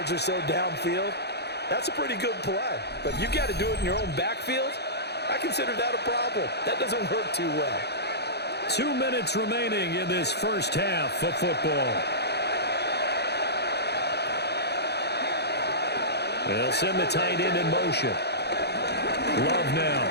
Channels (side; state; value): right; late; 0.48 ms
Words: or so downfield, that's a pretty good play. But if you got to do it in your own backfield, I consider that a problem. That doesn't work too well. 2 minutes remaining in this first half of football. They'll send the tight end in motion. Love now.